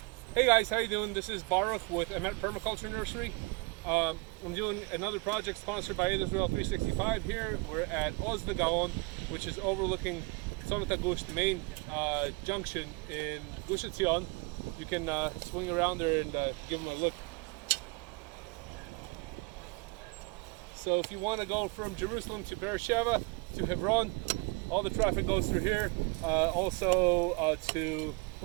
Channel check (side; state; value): left; quieter; 27.9 dB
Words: Hey guys, how you doing? This is Baruch with Emet Permaculture Nursery. I'm doing another project sponsored by Israel365 here. We're at Oz Gaon, which is overlooking Gush, the main junction in Gush Etzion. You can swing around there and give them a look. So if you want to go from Jerusalem to Beersheba to Hebron, all the traffic goes through here. Also to,